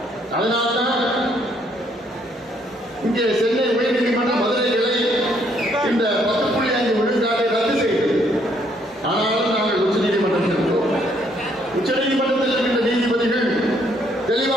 அதனால்தான் இங்கே சென்னை உயர்நீதிமன்ற மதுரை கிளை இந்த 10.5 விழுக்காட்டை ரத்து செய்தது. ஆனாலும் நாங்கள் உச்சநீதிமன்றம் சென்றோம். உச்சநீதிமன்றத்தில் இருக்கின்ற நீதிபதிகள்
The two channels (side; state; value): both; normal; correlation 0.68